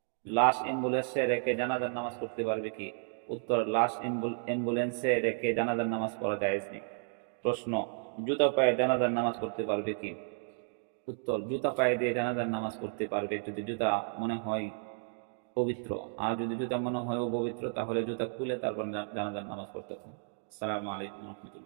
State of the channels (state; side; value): silent; left; digital silence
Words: লাশ অ্যাম্বুলেন্সে রেখে জানাজার নামাজ পড়তে পারবে কি? উত্তর: লাশ অ্যাম্বুলেন্সে রেখে জানাজার নামাজ পড়া জায়েজ নেই। প্রশ্ন: জুতা পায়ে জানাজার নামাজ পড়তে পারবে কি? উত্তর: জুতা পায়ে দিয়ে জানাজার নামাজ পড়তে পারবে যদি জুতা মনে হয় পবিত্র। আর যদি জুতা মনে হয় অপবিত্র, তাহলে জুতা খুলে তারপর জানাজার নামাজ পড়তে হবে। আসসালামু আলাইকুম